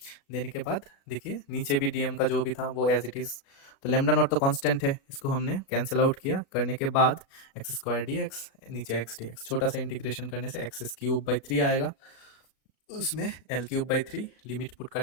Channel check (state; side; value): late; right; 36 ms